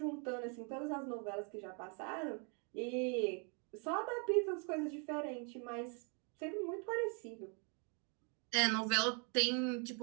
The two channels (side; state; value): left; quieter; 37.9 dB